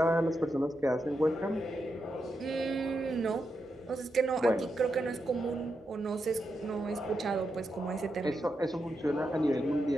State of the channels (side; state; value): both; normal; correlation 0.85